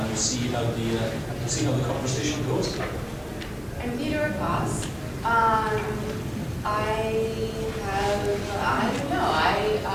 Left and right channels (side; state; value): both; identical; correlation 1.00